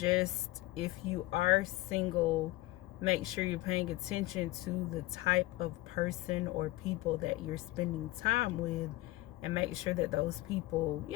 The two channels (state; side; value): quieter; right; 18.5 dB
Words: if you are single, make sure you're paying attention to the type of person or people that you're spending time with, and make sure that those people,